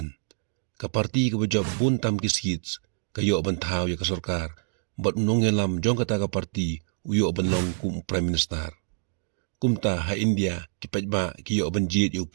Ka parti ka bajab buntam ki seats kayo bantaw ya ka sarkar bat nongelam jong kata ka parti uyo banlong kum prime minister. Kumta ha India ki paidbah ki yo banjid yo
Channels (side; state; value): left; silent; digital silence